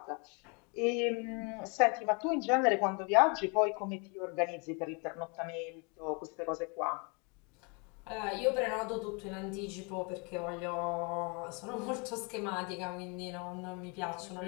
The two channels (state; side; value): quieter; right; 33.3 dB